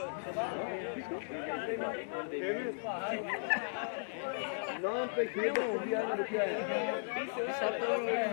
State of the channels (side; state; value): right; silent; digital silence